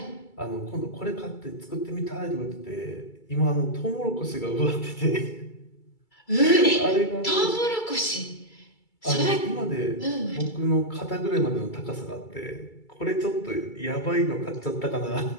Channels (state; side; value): late; right; 2.3 ms